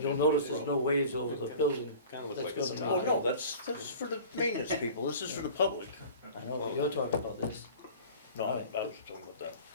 notice there's no waves over the building. Kinda look That's like it's gonna Oh, make no, it- that's for the maintenance people, this is for the public. I know, but you're talking about this. No, I was talking about that.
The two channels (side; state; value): both; inverted; correlation -0.42